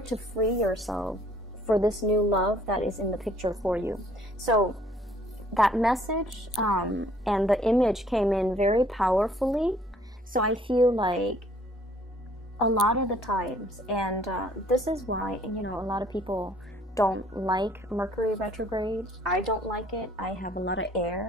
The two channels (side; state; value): both; normal; correlation 0.60